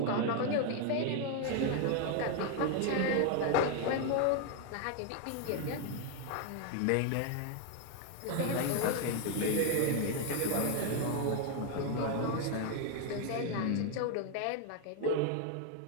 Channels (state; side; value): different; both; correlation 0.01